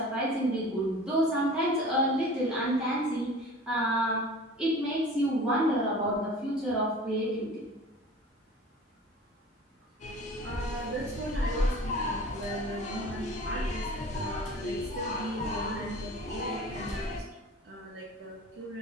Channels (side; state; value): both; normal; correlation 0.42